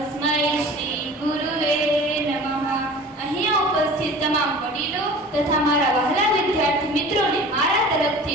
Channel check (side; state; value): both; normal; correlation 0.41